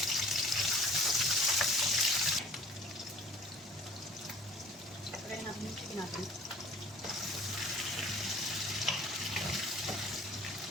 lagyan natin yung chicken natin.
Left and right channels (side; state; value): both; normal; correlation 0.48